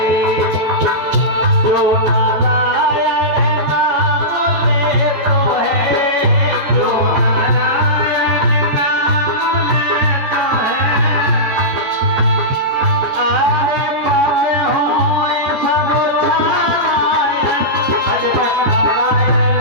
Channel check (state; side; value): late; left; 14 ms